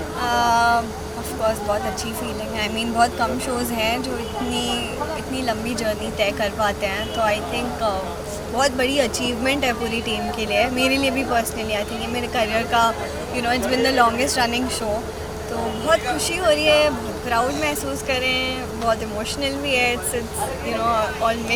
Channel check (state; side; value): identical; both; correlation 1.00